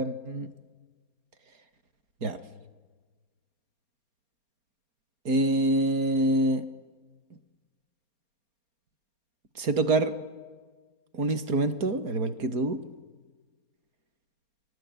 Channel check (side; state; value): left; late; 4.3 ms